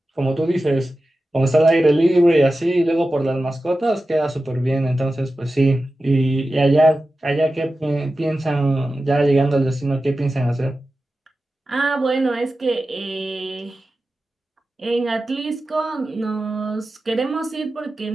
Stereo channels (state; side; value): normal; both; correlation 0.94